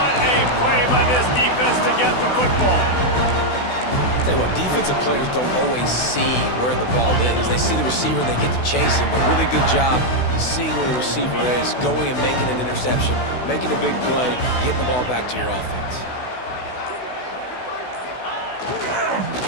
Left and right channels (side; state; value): right; late; 16 ms